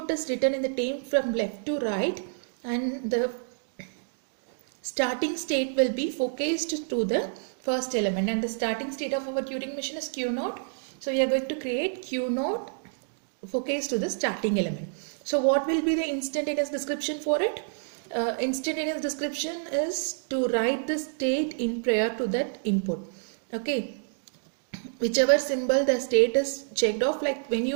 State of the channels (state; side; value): silent; left; digital silence